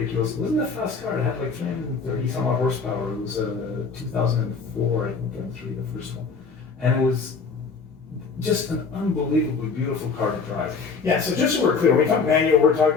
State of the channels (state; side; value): quieter; right; 4.9 dB